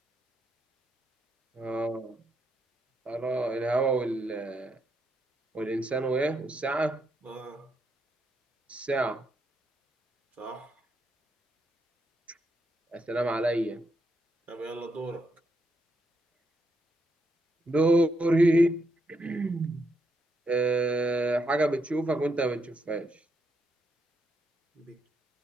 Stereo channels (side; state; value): both; normal; correlation 0.79